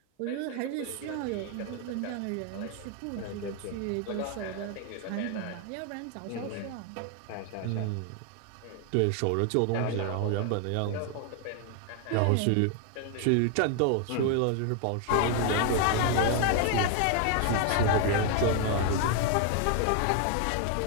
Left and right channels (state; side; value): different; both; correlation 0.01